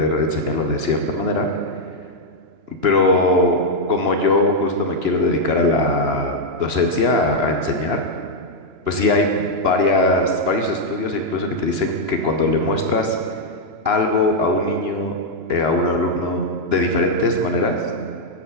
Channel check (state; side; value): late; left; 2.9 ms